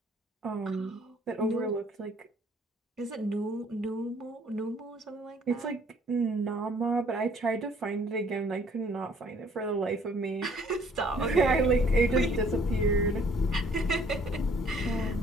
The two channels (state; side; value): normal; both; correlation 0.60